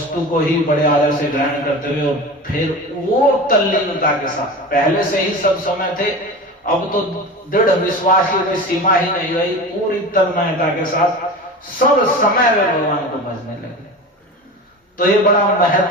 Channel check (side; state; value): both; normal; correlation 0.31